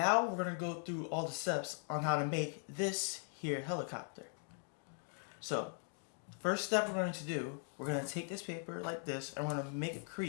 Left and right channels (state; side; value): silent; right; 51 dB below the other